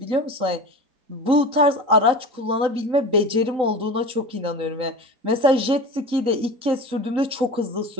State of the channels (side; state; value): left; late; 3.9 ms